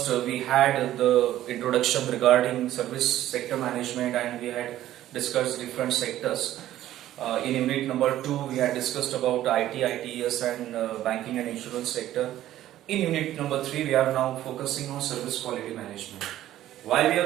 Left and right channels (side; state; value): left; quieter; 13.3 dB